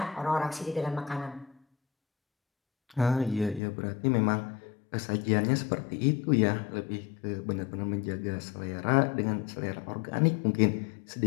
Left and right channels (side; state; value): right; drops out; at 3.6 s